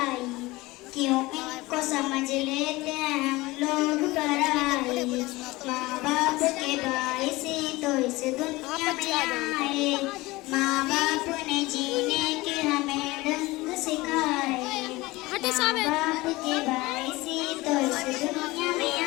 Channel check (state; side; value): quieter; right; 20.7 dB